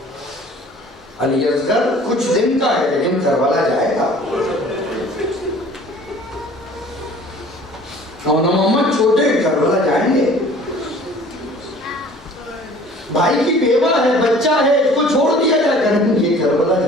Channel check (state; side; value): normal; both; correlation 0.49